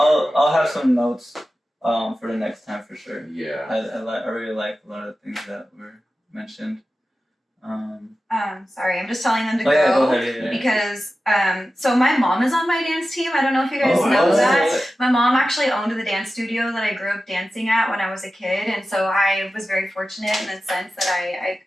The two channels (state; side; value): normal; both; correlation 0.94